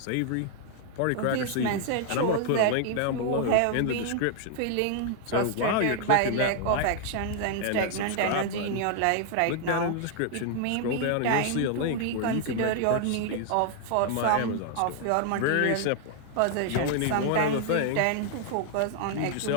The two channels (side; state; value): both; different; correlation 0.00